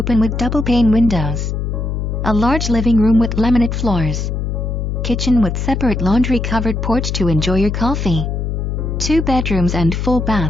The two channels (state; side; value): noise; left; hum, 2 dB below the sound